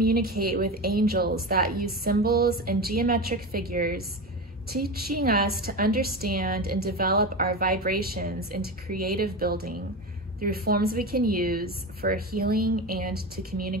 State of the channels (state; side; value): normal; both; correlation 0.23